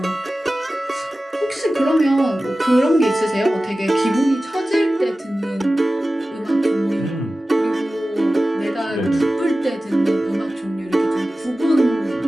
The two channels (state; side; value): normal; both; correlation 0.96